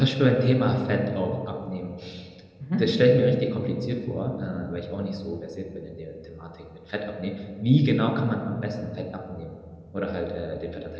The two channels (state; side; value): identical; both; correlation 1.00